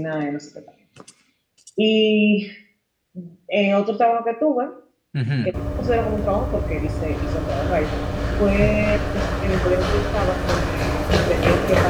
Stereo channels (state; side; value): identical; both; correlation 1.00